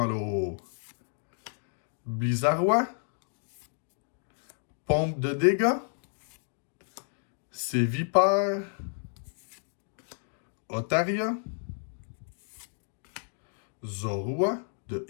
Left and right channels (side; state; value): right; silent; digital silence